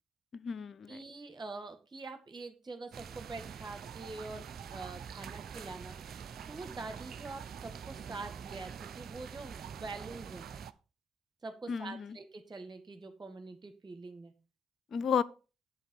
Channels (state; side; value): normal; both; correlation 0.70